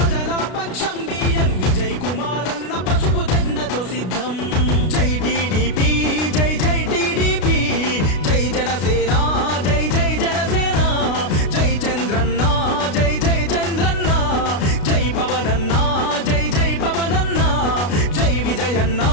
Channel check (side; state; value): right; late; 33 ms